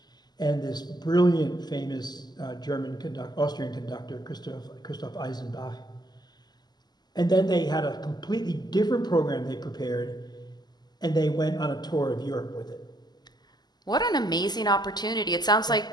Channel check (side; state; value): right; late; 0.20 ms